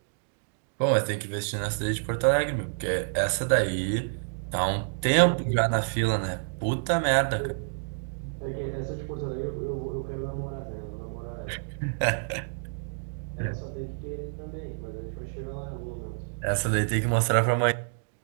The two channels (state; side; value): silent; left; digital silence